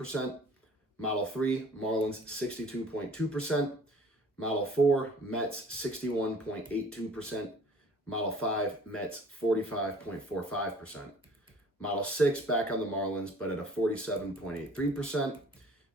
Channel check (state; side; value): normal; both; correlation 0.50